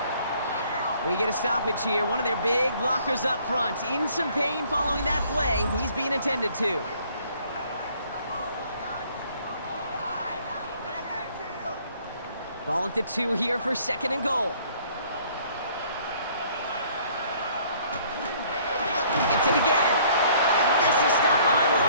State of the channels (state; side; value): inverted; both; correlation -0.59